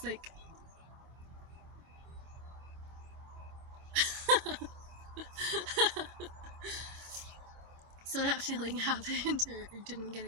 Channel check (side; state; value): left; late; 25 ms